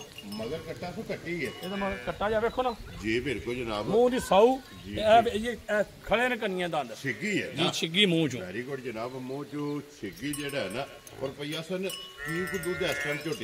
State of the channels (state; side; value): identical; both; correlation 1.00